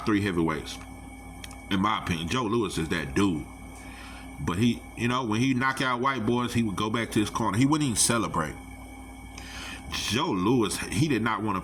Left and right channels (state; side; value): identical; both; correlation 1.00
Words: 3 heavyweights. In my opinion, Joe Louis is that dude. But he, when he knock out white boys, he would go back to his corner. He wouldn't even celebrate. Joe Louis, he did not want